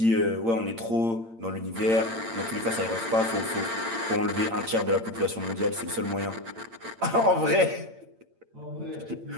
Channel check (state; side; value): late; left; 8.8 ms